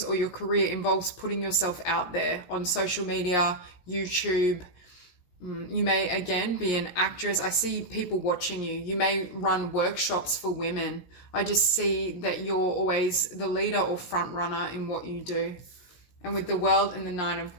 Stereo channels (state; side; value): late; right; 17 ms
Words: or your career involves putting yourself out there on social media, YouTube, You may, again, be an actress. I see people watching you. You may run workshops for women. I just see that you're always the leader or front runner in what you do. And with the World and the Nine of